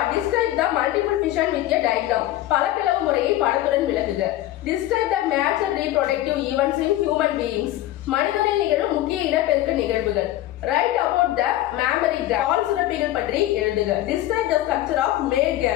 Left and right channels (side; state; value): right; quieter; 14.5 dB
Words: Describe the multiple fission with a diagram. பல பிளவு முறையை படத்துடன் விளக்குக. Describe the major reproductive events in human beings. மனிதனில் நிகழும் முக்கிய இனப்பெருக்க நிகழ்வுகள். Write about the mammary gland. பால் சுரப்பிகள் பற்றி எழுதுக. Describe the structure of male